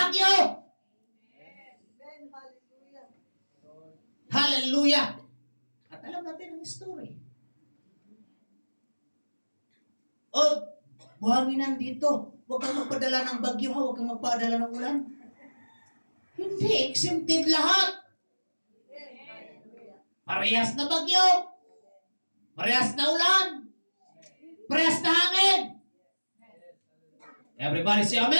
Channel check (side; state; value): both; inverted; correlation -1.00